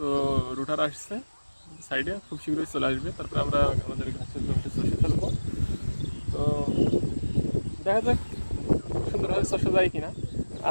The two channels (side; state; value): both; inverted; correlation -1.00